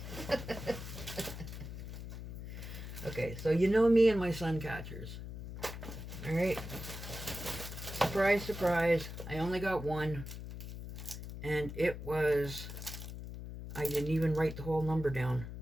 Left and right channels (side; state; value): left; noise; hum, 9 dB below the sound